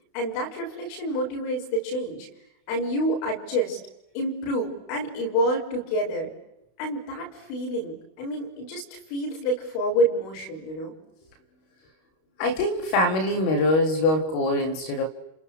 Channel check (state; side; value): late; right; 32 ms